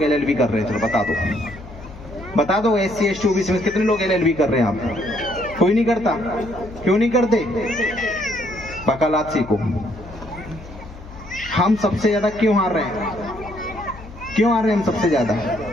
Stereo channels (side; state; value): left; noise; hum, 16 dB below the sound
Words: एलएलबी कर रहे हैं। चलो बता दो, बता दो। एससी एसटी ओबीसी में कितने लोग एलएलबी कर रहे हैं? आप कोई नहीं करता। क्यों नहीं करते? वकालत सीखो। हम सबसे ज्यादा क्यों हार रहे हैं? क्यों आ रहे हैं हम सबसे ज्यादा?